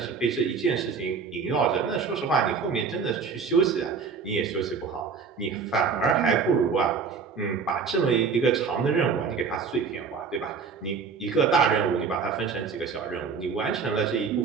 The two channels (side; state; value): left; quieter; 5.5 dB